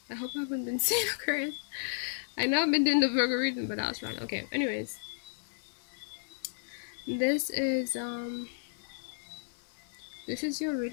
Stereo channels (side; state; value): right; silent; 56 dB below the other